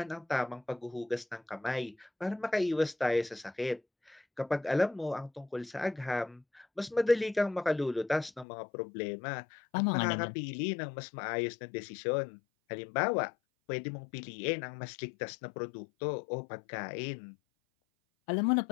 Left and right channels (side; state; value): right; drops out; at 8.5 s